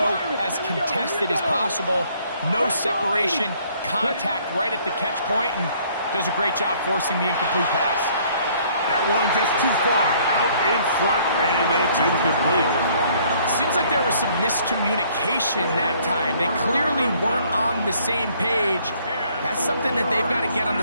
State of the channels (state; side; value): inverted; both; correlation -0.61